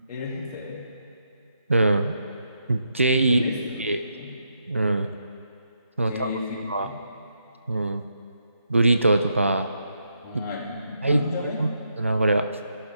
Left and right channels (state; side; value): inverted; both; correlation -0.80